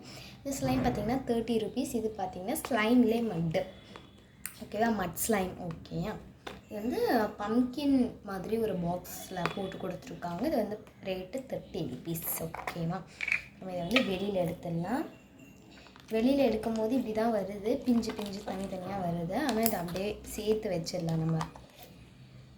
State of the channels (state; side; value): identical; both; correlation 1.00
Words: இந்த ஸ்லைம் பார்த்திங்கன்னா 30 rupees. இது பார்த்திங்கன்னா ஸ்லைம்லேயே மட்டு ஓகேவா, மட் ஸ்லைம். ஓகேயா, இது வந்து பம்கின் மாதிரி ஒரு பாக்ஸில் போட்டு கொடுத்துருக்காங்க. இது வந்து ரேட்டு 30 rupees. ஓகேவா, நம்ம இதை வந்து வெளியில் எடுத்துடலாம். வெளியில் எடுக்கும் போது இப்படி தான் வருது, பிஞ்சு பிஞ்சு தனித்தனியாக வருது. ஆனால் இதை அப்படியே சேர்த்து வச்சிடலாம். நம்ம